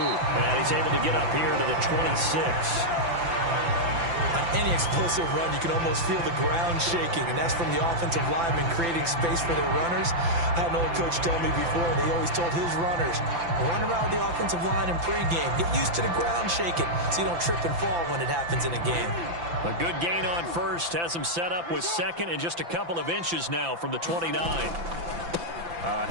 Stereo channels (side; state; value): left; late; 5.9 ms